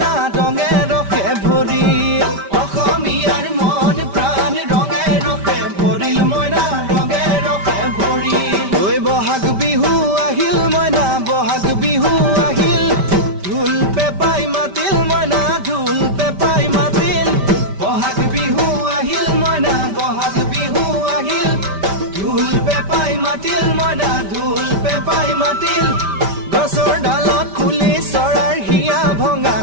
ৰঙে ৰসে ভৰিল অসমীয়াৰ মন প্ৰাণ ৰঙে ৰসে ভৰিল মইনা ৰঙে ৰসে ভৰিল ঐ বহাগ বিহু আহিল মইনা বহাগ বিহু আহিল ঢোল পেপাই মাতিল মইনা ঢোল পেপাই মাতিল বহাগ বিহু আহিল মইনা বহাগ বিহু আহিল ঢোল পেপাই মাতিল মইনা ঢোল পেপাই মাতিল গছৰ ডালত খুলি চৰাইৰ হিয়া ভঙা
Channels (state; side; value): late; left; 5.1 ms